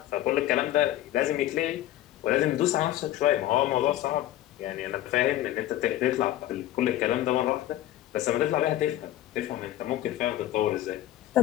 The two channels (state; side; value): quieter; right; 13.8 dB